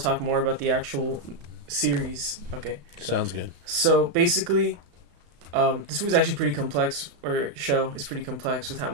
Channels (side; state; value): left; late; 35 ms